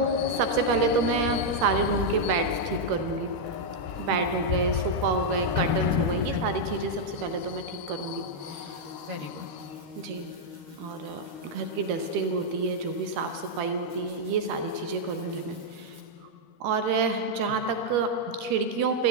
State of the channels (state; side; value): late; left; 13 ms